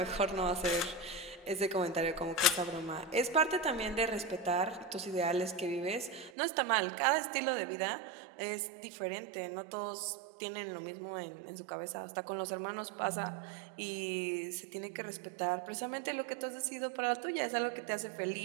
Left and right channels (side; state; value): left; drops out; at 6.3 s